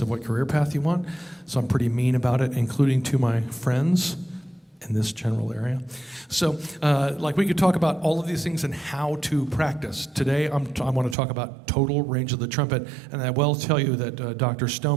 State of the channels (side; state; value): left; drops out; at 11.2 s